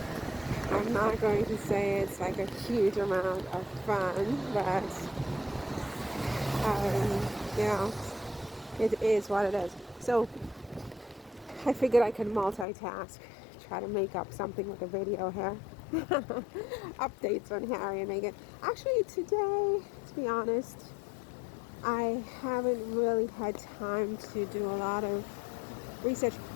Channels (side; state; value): right; drops out; at 12.7 s